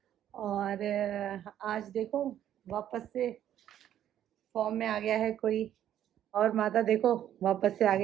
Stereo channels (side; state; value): left; quieter; 11.0 dB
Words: और आज देखो वापस से फॉर्म में आ गया है कोई। और माता देखो वापस से आ